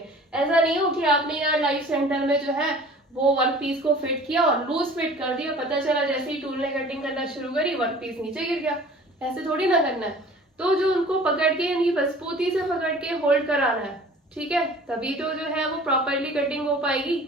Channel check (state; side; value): normal; both; correlation 0.46